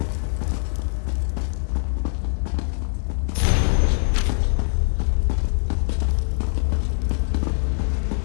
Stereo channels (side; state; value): right; silent; digital silence